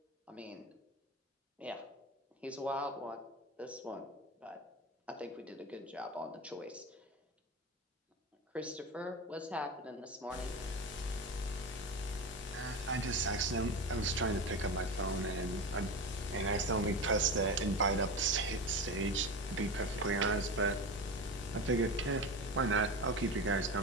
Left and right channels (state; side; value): normal; both; correlation 0.24